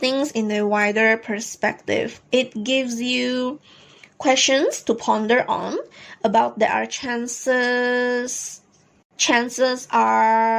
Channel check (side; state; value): both; identical; correlation 1.00